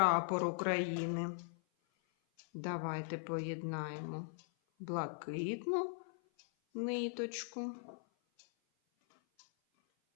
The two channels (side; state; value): right; silent; 51 dB below the other